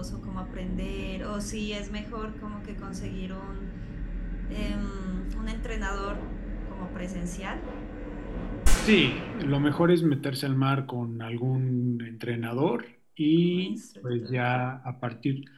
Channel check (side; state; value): both; identical; correlation 1.00